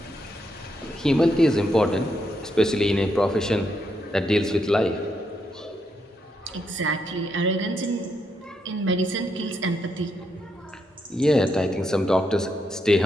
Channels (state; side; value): normal; both; correlation 0.79